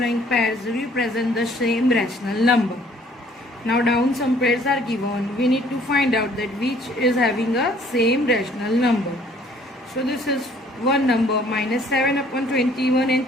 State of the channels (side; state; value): both; normal; correlation 0.58